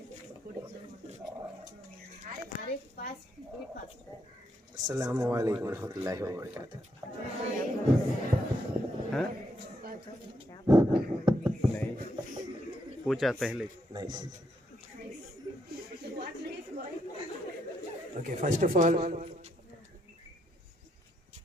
अस्सलामु अलैकुम रहमतुल्लाहि व बरकातुहू। हाँ? नहीं पूछा पहले नहीं। Okay, first of all,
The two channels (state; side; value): normal; both; correlation 0.77